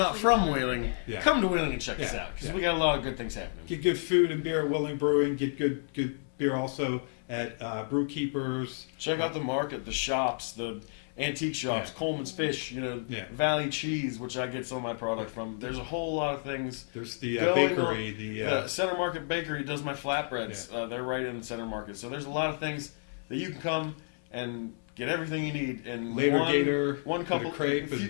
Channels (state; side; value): silent; right; 57 dB below the other